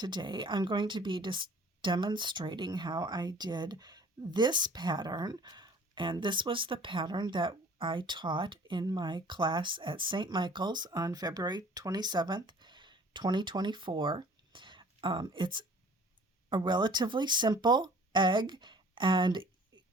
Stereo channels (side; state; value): both; normal; correlation 0.51